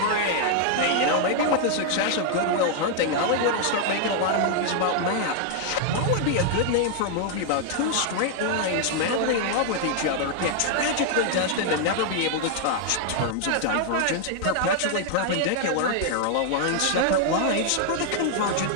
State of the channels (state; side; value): different; both; correlation 0.00